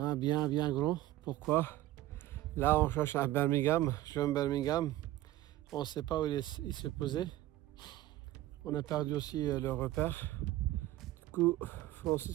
bien grand. Pourquoi? Là on cherche un Birmingham, jeune Birmingham. On ne sait pas où il s'est posé. On a perdu aussi le repère. Du coup,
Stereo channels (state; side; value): quieter; left; 15.3 dB